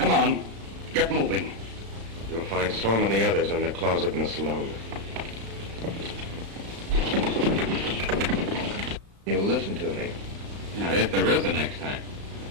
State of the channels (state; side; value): late; left; 35 ms